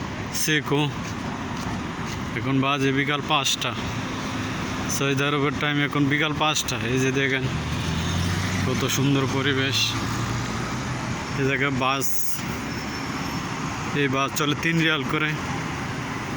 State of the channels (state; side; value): identical; both; correlation 1.00